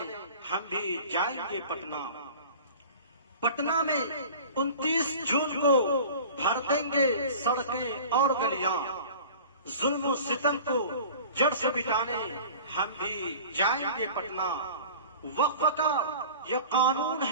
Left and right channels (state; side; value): inverted; both; correlation -0.41